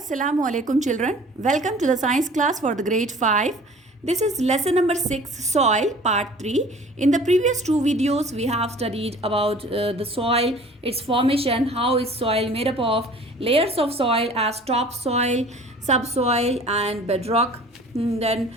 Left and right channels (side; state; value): both; normal; correlation 0.47